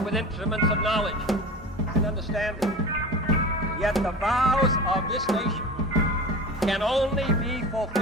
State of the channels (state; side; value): normal; both; correlation 0.33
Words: with instruments of knowledge and understanding. Yet the vows of this nation can only be